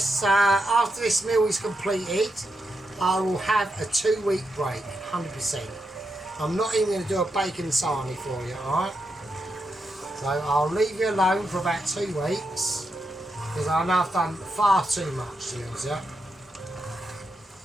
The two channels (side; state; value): both; normal; correlation 0.84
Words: meal is completed, I will have a 2-week break, 100%. I'm not even going to do a bacon sarnie for you, alright? So I'll leave you alone for about 2 weeks, because I know I've done far too much to use it.